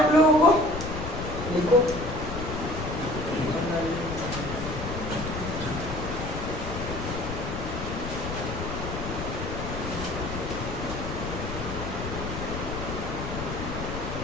लोगों को, लिखो।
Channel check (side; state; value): left; noise; rumble, 6 dB below the sound